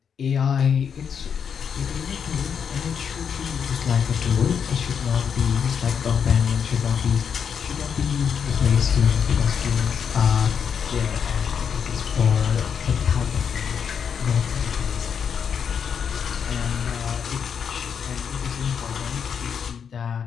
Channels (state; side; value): quieter; right; 7.2 dB